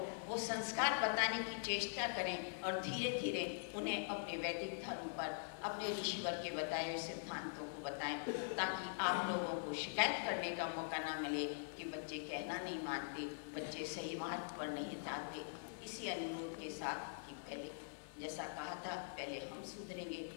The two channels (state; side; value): silent; right; digital silence